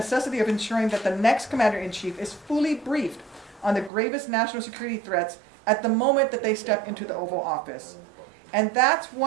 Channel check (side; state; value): left; drops out; at 3.9 s